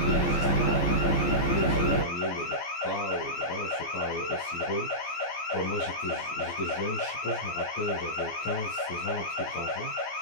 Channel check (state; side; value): late; right; 14 ms